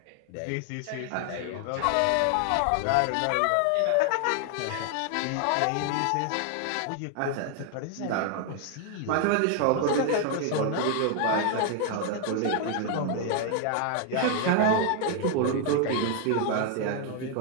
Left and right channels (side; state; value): both; different; correlation 0.00